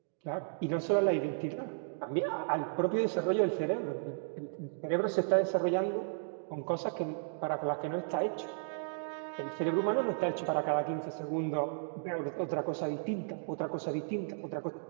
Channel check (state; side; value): silent; left; digital silence